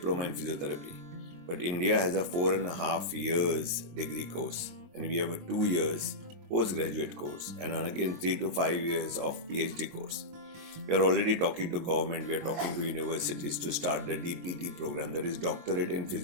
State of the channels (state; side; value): late; left; 23 ms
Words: in physiotherapy, but India has a 4.5 years degree course, and we have a 2 years postgraduate course, and again 3 to 5 years of PhD course. We are already talking to government, we are talking to universities to start the DPT program, that is Doctorate in